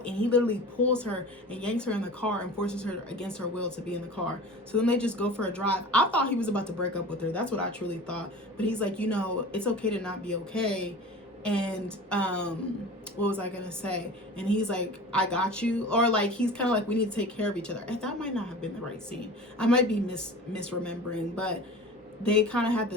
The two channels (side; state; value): both; normal; correlation 0.37